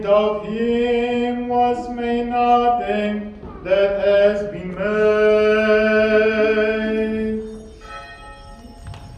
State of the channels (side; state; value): both; identical; correlation 1.00